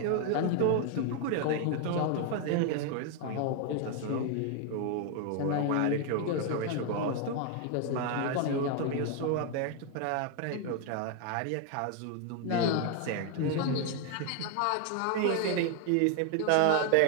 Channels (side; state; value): both; different; correlation 0.01